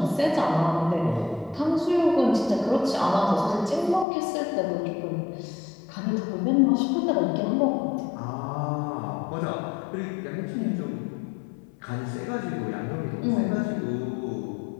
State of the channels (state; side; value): drops out; right; at 4.0 s